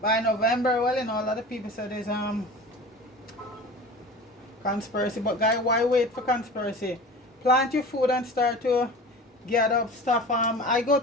by November, well, you know, a lot of people said there's conspiracy, but guys, why wait for conspiracy? Plant your food and start to get up stuff. I go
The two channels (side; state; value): both; normal; correlation 0.37